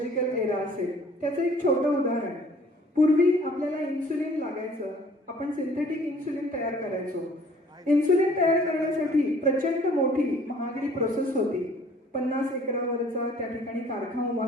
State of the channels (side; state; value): both; normal; correlation 0.55